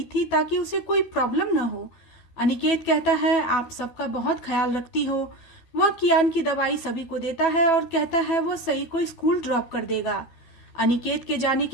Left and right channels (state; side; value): late; right; 12 ms